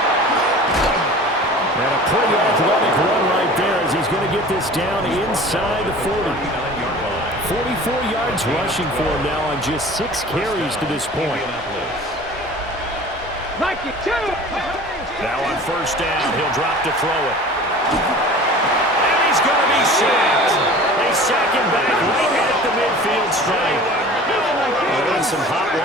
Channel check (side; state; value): both; normal; correlation 0.42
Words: And a pretty athletic run right there as he's going to get this down inside the 40. 44 yards rushing for him now on just 6 carries to this point. Now on 1st down, he'll drop to throw it. And he's going to be sacked. They sack him back right at the midfield stripe. They're in some hot